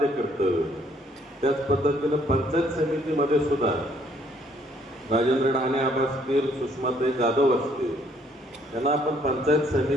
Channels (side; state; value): both; normal; correlation 0.65